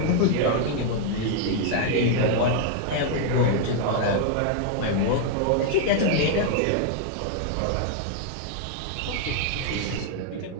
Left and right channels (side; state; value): both; different; correlation 0.00